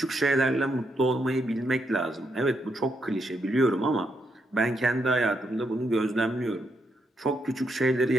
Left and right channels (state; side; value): normal; both; correlation 0.79